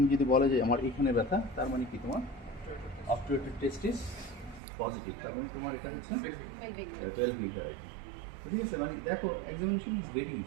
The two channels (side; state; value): left; drops out; at 4.6 s